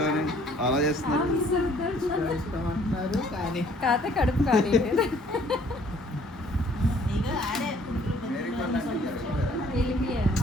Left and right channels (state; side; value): normal; both; correlation 0.59